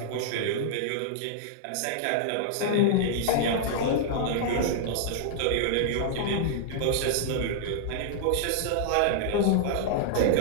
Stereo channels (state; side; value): different; both; correlation -0.01